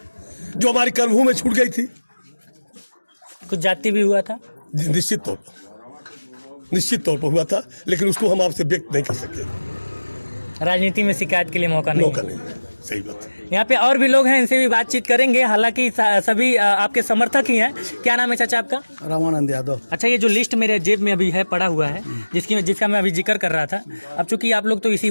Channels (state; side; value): inverted; both; correlation -1.00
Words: जो हमारी कर्मभूमि छूट गई थी, कुछ जाति भी हुआ था, निश्चित तौर पर हुआ था, लेकिन उसको हम आपसे व्यक्त नहीं कर सकते। राजनीति में शिकायत के लिए मौका नहीं। सही बात है। यहाँ पे और भी लोग हैं, इनसे भी बातचीत करेंगे, हालांकि सभी आपके समर्थक ही हैं। क्या नाम है चाचा आपका? रामानंद यादव। अच्छा, ये जो लिस्ट मेरे जेब में अभी है पड़ा हुआ है, जिसका मैं अभी जिक्र कर रहा था, अब चूंकि आप लोग तो इसी